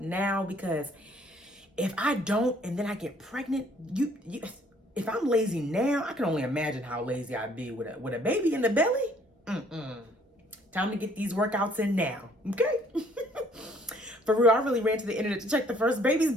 because if I don't and then I get pregnant, if I'm lazy now, I can only imagine how lazy I'd be with a baby in the belly. Time to get these workouts in now, okay? For real, I really ran to the internet to check the first baby's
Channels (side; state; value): both; normal; correlation 0.61